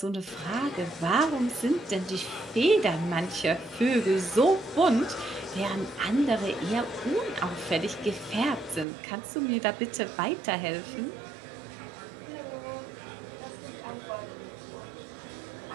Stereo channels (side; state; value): left; drops out; at 8.8 s